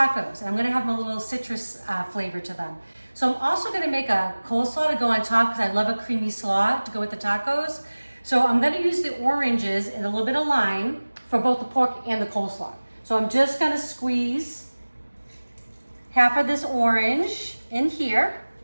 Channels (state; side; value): inverted; both; correlation -1.00